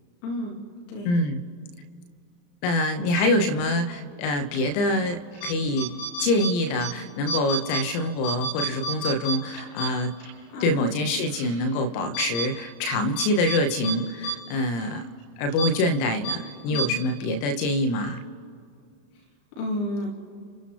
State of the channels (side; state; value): right; late; 34 ms